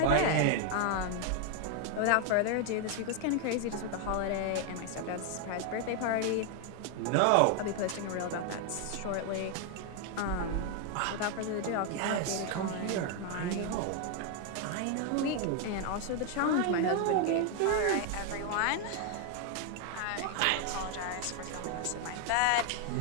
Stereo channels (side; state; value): both; different; correlation 0.01